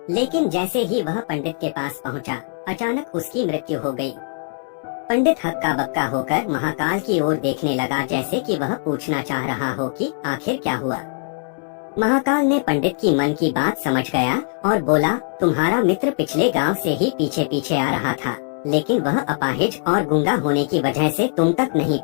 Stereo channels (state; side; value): silent; right; 65 dB below the other